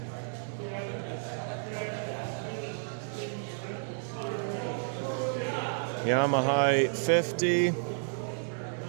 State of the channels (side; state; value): left; silent; digital silence